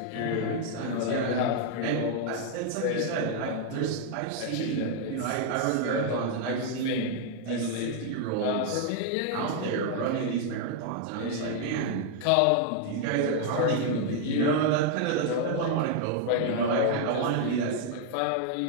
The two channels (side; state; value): both; different; correlation 0.00